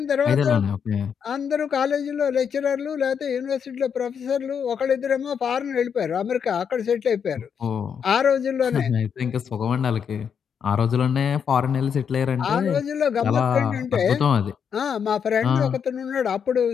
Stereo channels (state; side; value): quieter; right; 7.3 dB